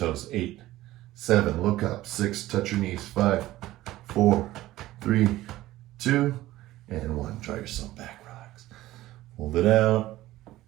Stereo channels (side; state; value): left; quieter; 16.1 dB